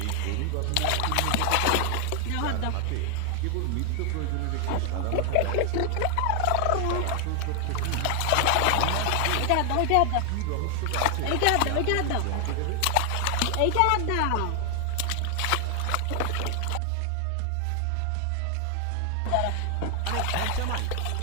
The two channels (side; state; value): both; different; correlation 0.00